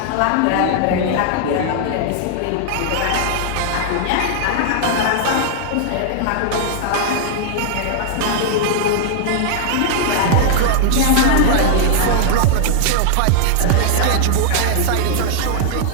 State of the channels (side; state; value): both; different; correlation -0.01